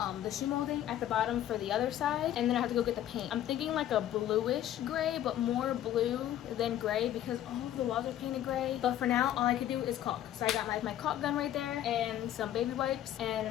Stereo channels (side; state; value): right; quieter; 12.0 dB